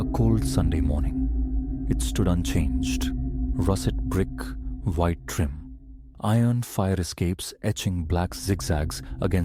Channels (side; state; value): both; identical; correlation 1.00